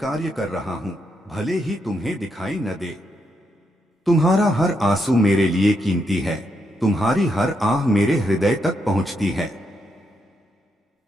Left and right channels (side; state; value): both; normal; correlation 0.80